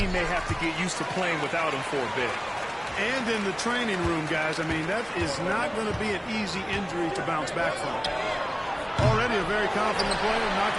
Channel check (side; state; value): both; identical; correlation 1.00